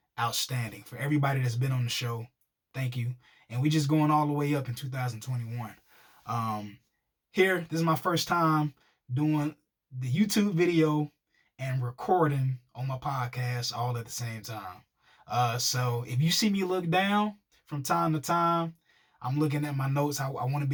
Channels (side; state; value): both; identical; correlation 1.00